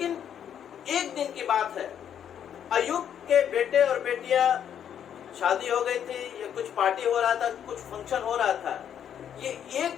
एक दिन की बात है, अय्यूब के बेटे और बेटियां शादी हो गई थी, या कुछ पार्टी हो रहा था, कुछ फंक्शन हो रहा था। ये एक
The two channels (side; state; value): right; quieter; 9.1 dB